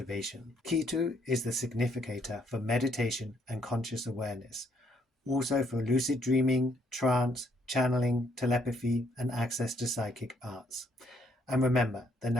Ketu is the significator for meditation and conscious awareness, also for lucid dreaming, trance, channeling, telepathy, and access to psychic arts. And remember, the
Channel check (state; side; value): normal; both; correlation 0.70